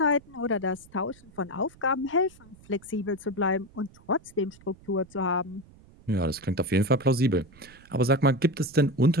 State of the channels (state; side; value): noise; right; rumble, 25 dB below the sound